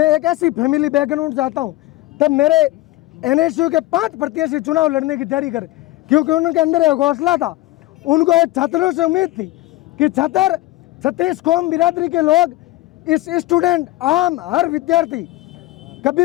एक ऐसी फैमिली बैकग्राउंड से आता हूँ, तब मेरे NSU के 5 प्रत्याशी चुनाव लड़ने की तैयारी कर, क्योंकि उनके अंदर एक हौसला था उनको एक छात्रों से उम्मीद थी कि छात्र 36 कौम बिरादरी के लोग, इस स्टूडेंट, आम हर विद्यार्थी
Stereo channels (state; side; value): quieter; right; 17.6 dB